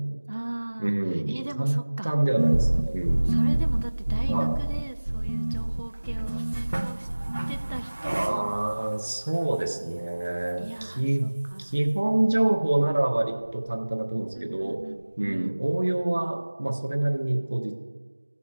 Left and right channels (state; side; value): inverted; both; correlation -1.00